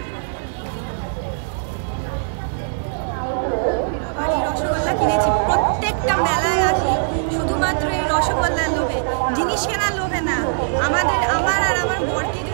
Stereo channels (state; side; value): silent; left; digital silence